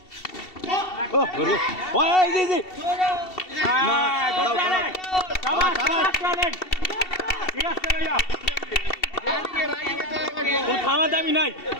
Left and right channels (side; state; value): right; late; 2.7 ms